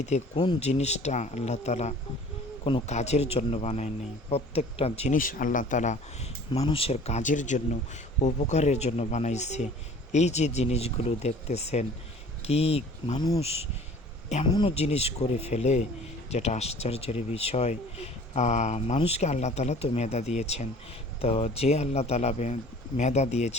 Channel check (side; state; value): both; normal; correlation 0.48